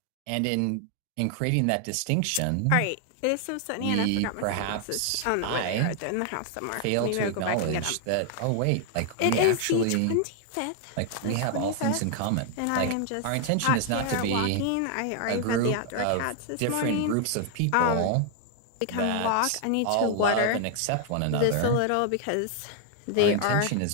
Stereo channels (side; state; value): both; different; correlation 0.00